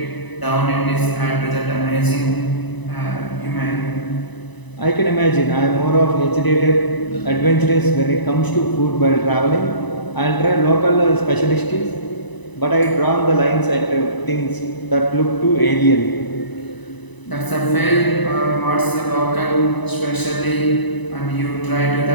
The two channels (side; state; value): right; late; 1.0 ms